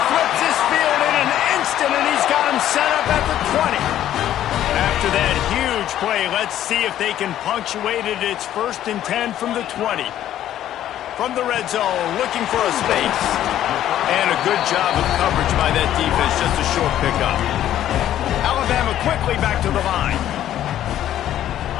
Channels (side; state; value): right; quieter; 11.9 dB